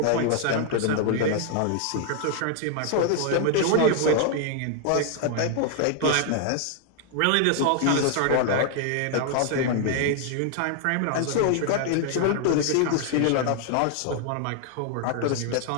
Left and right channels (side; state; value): both; different; correlation 0.00